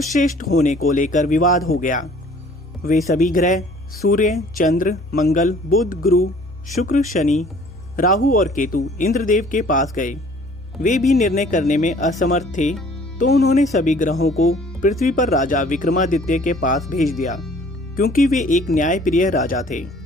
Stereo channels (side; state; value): both; normal; correlation 0.54